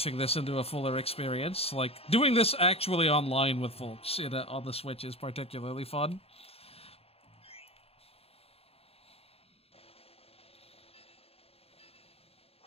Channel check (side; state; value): right; late; 0.29 ms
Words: this into a fuller experience. Like, doing this actually online with folks on the Switch is particularly fun.